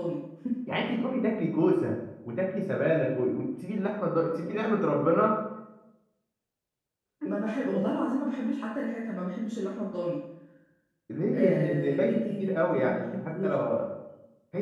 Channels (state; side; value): identical; both; correlation 1.00